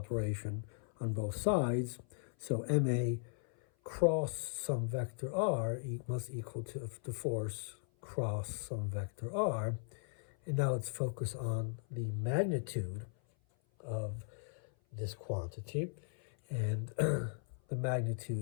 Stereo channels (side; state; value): right; silent; 53 dB below the other